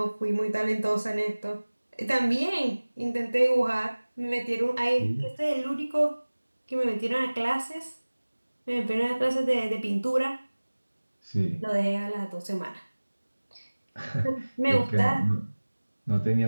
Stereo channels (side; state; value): both; inverted; correlation -1.00